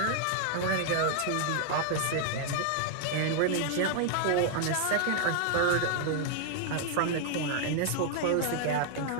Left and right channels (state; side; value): different; both; correlation 0.00